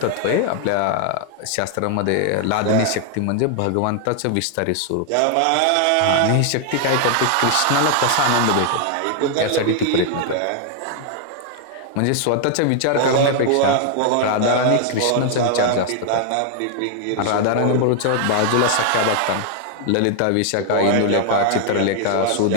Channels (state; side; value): different; both; correlation 0.00